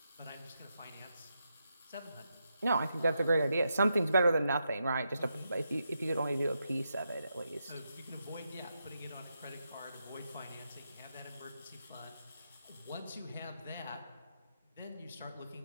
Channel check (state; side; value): inverted; both; correlation -0.84